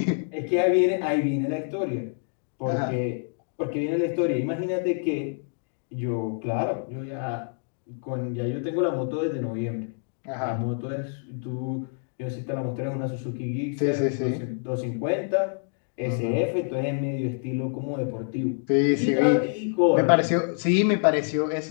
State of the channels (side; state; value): right; silent; 60 dB below the other